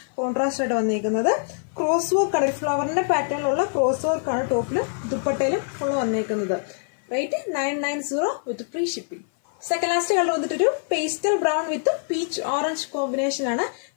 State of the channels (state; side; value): silent; right; 56 dB below the other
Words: കോൺട്രാസ്റ്റ് ആയിട്ട് വന്നിരിക്കുന്നത്. ക്രോസ് വർക്ക് ആണ്. ഒരു ഫ്ലവറിന്റെ പാറ്റേണിലുള്ള ക്രോസ് വർക്ക് ആണ് ടോപ്പിലും ദുപ്പട്ടയിലും ഫുള്ള് വന്നിരിക്കുന്നത്. Rate 990 with free shipping. Second last colour വന്നിട്ടൊരു pastel brown with peach orange combination ആണ്.